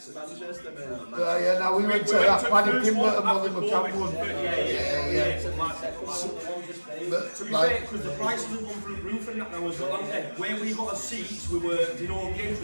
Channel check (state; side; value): inverted; both; correlation -1.00